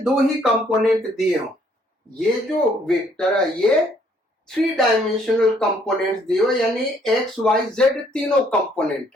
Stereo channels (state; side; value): normal; both; correlation 0.65